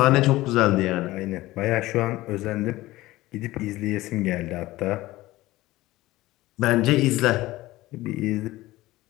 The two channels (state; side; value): quieter; right; 17.8 dB